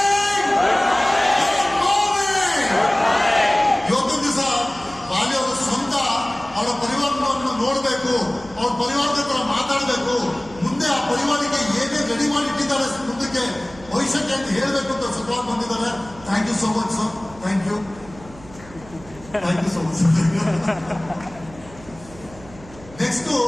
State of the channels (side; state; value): right; noise; hum, 20 dB below the sound